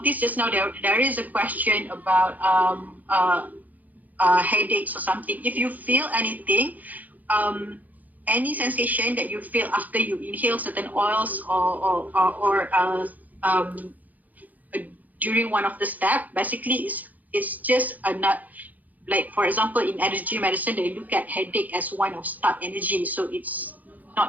just now there is a question about headaches or something. If you feel anything, any sensation that you feel after you inhale certain oils or during one of the steps, basically it's just a nut. Like for example, in energy medicine, they look at headache as one of stuck energy. So it's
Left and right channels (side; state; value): left; late; 0.081 ms